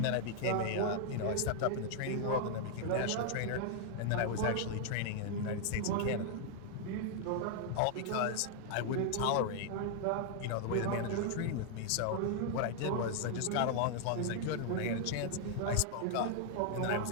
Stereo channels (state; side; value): different; both; correlation 0.00